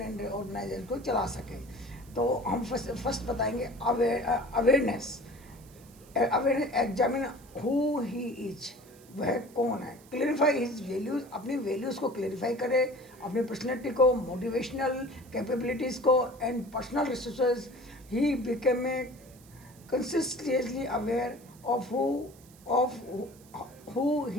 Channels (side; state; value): right; noise; hiss, 25 dB below the sound